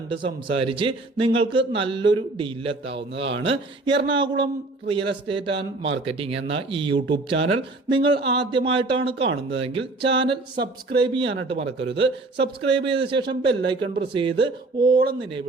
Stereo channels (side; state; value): left; quieter; 3.1 dB